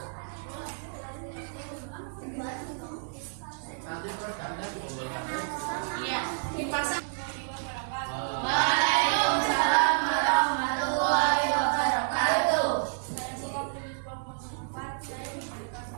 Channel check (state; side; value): silent; left; digital silence